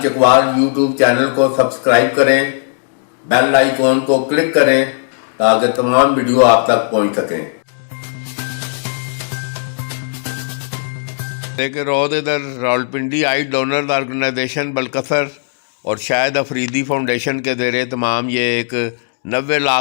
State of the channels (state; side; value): silent; right; digital silence